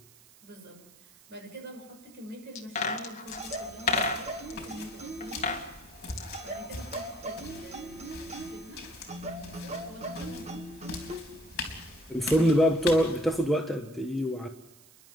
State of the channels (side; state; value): right; noise; hiss, 24 dB below the sound